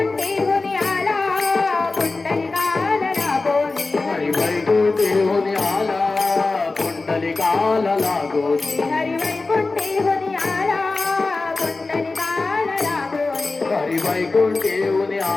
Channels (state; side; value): quieter; right; 3.6 dB